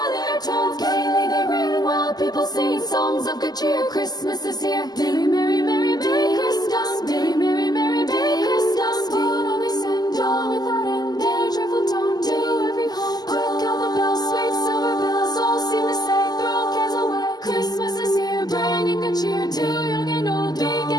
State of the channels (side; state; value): right; late; 0.20 ms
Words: their tones. Gaily they ring while people sing songs of good cheer. Christmas is here. Merry, merry, merry, merry Christmas. Merry, merry, merry, merry Christmas. What all they send, all without end. Their joyful tone to every home. Hark how the bells, sweet silver bells, all seem to say, throw cares away. Christmas is here, bringing good cheer to young and old, big